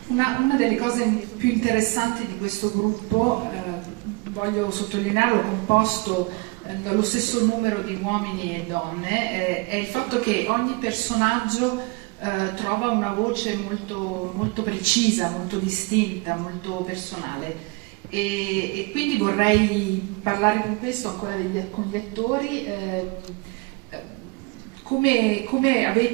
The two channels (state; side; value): quieter; left; 27.3 dB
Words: Una delle cose più interessanti di questo gruppo, voglio sottolinearlo, composto dallo stesso numero di uomini e donne, è il fatto che ogni personaggio trova una voce molto, molto precisa, molto distinta, molto personale. E quindi vorrei parlare con questo ancora con gli attori. Come